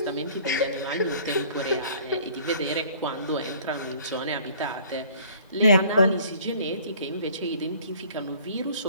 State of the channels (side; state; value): both; inverted; correlation -0.53